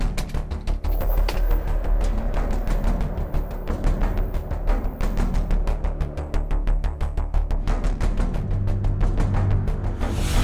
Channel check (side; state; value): both; identical; correlation 1.00